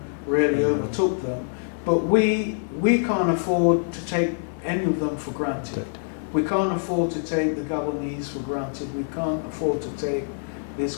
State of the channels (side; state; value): right; silent; digital silence